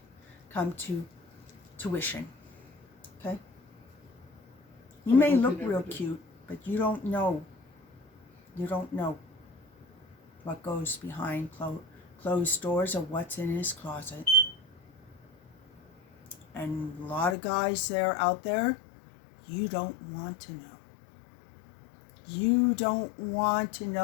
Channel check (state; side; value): drops out; right; at 17.4 s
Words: to tuition. Okay? You may look real cute, but you don't know. You don't know what goes behind closed doors or what's in his closet. And a lot of guys out there, you don't want to know. You don't want to